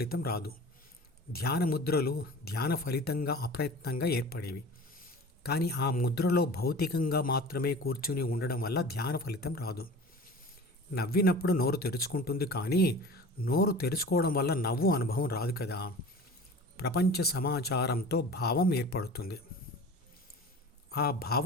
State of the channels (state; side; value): normal; both; correlation 0.39